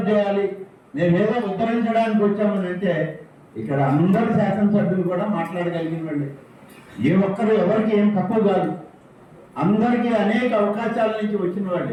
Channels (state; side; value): identical; both; correlation 1.00